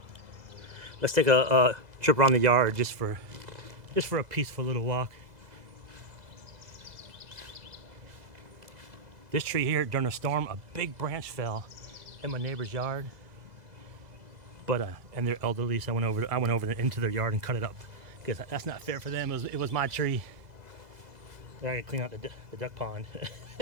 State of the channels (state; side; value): late; left; 2.0 ms